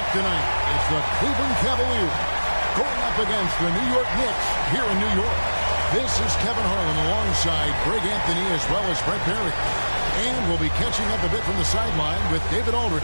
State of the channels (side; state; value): both; inverted; correlation -1.00